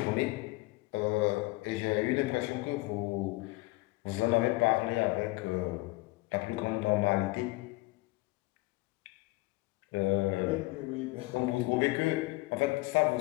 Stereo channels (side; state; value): right; quieter; 22.5 dB